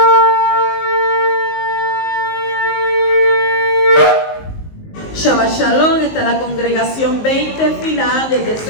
Shalom, está la congregación 20 final desde el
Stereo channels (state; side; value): late; right; 19 ms